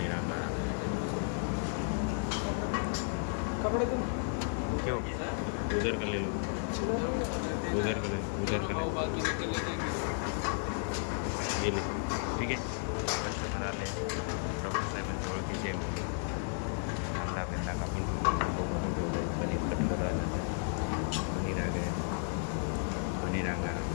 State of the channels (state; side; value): silent; right; 55 dB below the other